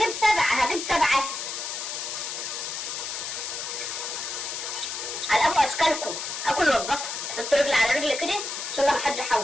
سبعة على ابو اشكالكم. اكل واتبسط، حط رجلي على رجلي كده عشان ما حد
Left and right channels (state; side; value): noise; left; hiss, 5 dB below the sound